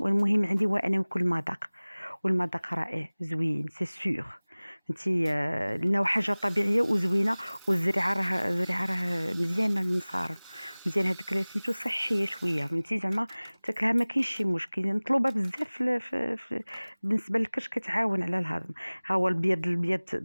عندي هو انا ناكل المذاق، والمذاق رائع زوين سي سور. انتي لنا حاجه طبيعيه وزوينه، والزريعه راه مزيانه المصارم مزيان. هذيك سميتو صحيه شويه فهمتي زعما تاكلها ما كاينش شي مشكل. مطلوبه بزاف بالنسبه للكرش كتعاون على الهضم. ها هو البيض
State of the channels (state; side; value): inverted; both; correlation -1.00